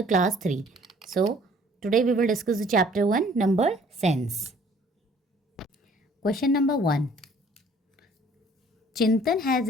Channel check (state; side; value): normal; both; correlation 0.56